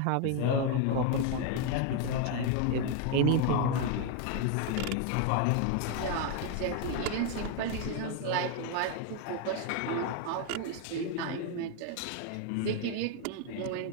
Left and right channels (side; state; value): both; different; correlation 0.01